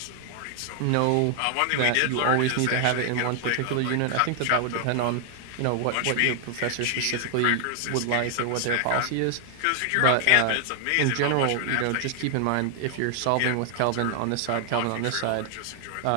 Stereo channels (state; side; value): different; both; correlation 0.00